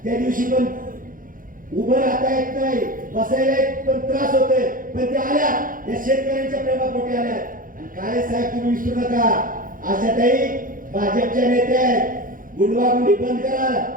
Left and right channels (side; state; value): left; late; 0.40 ms